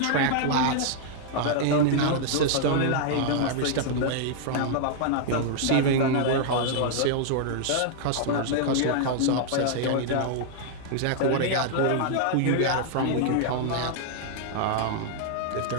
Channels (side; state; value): both; different; correlation 0.00